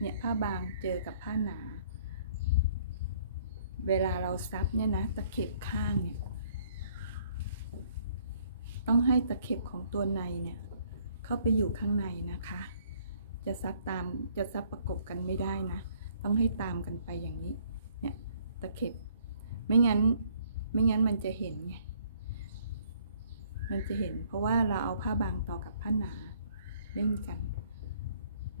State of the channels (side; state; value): both; inverted; correlation -0.62